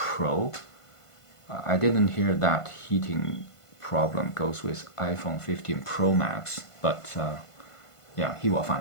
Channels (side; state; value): right; late; 1.5 ms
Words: I didn't hear that heating problem goes with iPhone 15 Pro Max, but yeah, he will